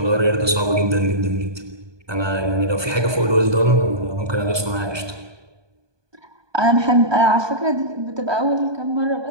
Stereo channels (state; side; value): late; left; 1.2 ms